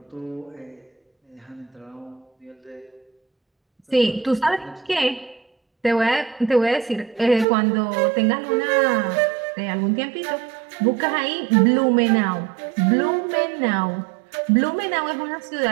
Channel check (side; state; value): left; drops out; at 7.5 s